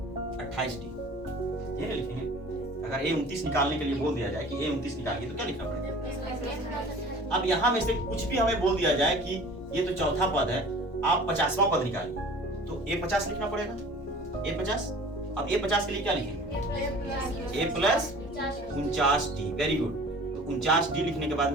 28d, ये लिखेंगे। अगर A29 निकालने के लिए बोल दिया जाए कि A29 निकालिए, तो क्या लिखना पड़ेगा। अब यहां में से कुछ भी हमें बोल दिया जाए कि ये तो चौथा पद है, आप 50वां पद निकालिए, तो A50 लिखना पड़ेगा, A50। अब A50 के लिए क्या लिखेंगे, a plus 49d। Very good. तो 49d लिखने के बाद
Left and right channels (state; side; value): normal; both; correlation 0.45